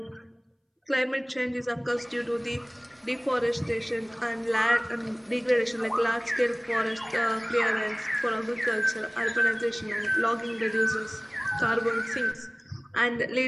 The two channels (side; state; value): both; identical; correlation 1.00